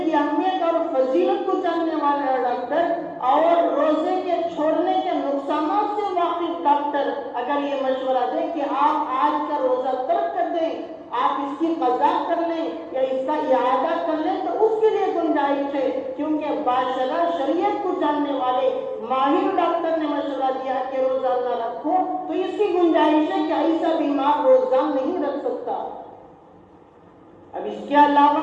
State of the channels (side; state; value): both; identical; correlation 1.00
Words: اہمیت اور فضیلت کو جاننے والا ڈاکٹر اور روزے کے چھوڑنے کے نقصانات سے واقف ڈاکٹر اگر یہ مشورہ دے کہ آپ آج کا روزہ ترک کر دیں، آپ اس کی قضا کر لیں یا اس کا اعادہ کر لیں، تو اس کے لیے گنجائش ہے، کیونکہ باشرح شریعت کو جاننے والے ماہر ڈاکٹر نے مشورہ دیا کہ روزہ نہ رکھو، تو اس کی گنجائش ہے کہ ایسا بیمار روزہ نہیں رکھ سکتا۔ اب اس کے